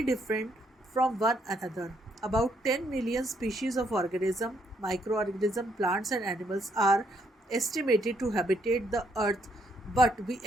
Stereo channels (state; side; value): normal; both; correlation 0.72